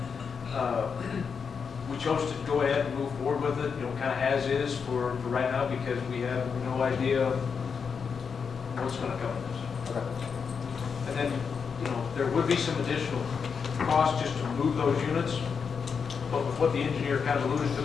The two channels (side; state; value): right; quieter; 6.1 dB